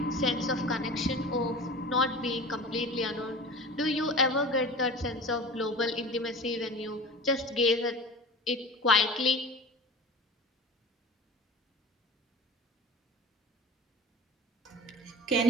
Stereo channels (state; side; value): normal; both; correlation 0.35